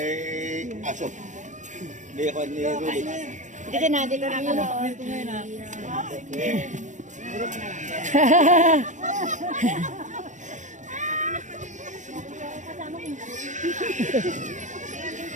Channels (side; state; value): left; late; 0.36 ms